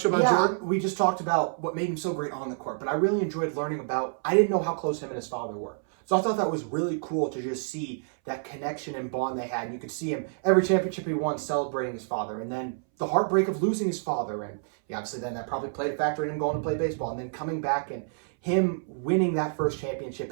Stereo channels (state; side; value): silent; left; 59 dB below the other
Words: you about Jordan? We just talked about what made him so great on the court, but I really enjoyed learning about. I didn't know how close him and his father were, so I thought that was really cool to just see that connection and bond they had. And you could see him every championship he won celebrating his father, and then the heartbreak of losing his father, and obviously then that probably played a factor in him going to play baseball, and then coming back and him winning that first championship.